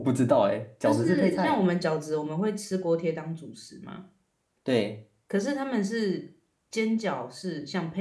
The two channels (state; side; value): identical; both; correlation 1.00